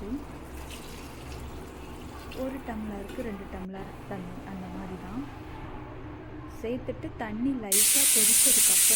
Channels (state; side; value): identical; both; correlation 1.00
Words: 1 டம்ளருக்கு 2 டம்ளர் தண்ணி அந்த மாதிரி தான் சேர்த்துட்டு தண்ணி லைட்டாக